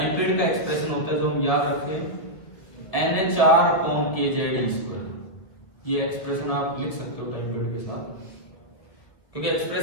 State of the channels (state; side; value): late; right; 1.7 ms